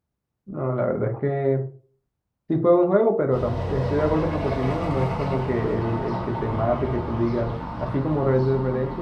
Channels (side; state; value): both; identical; correlation 1.00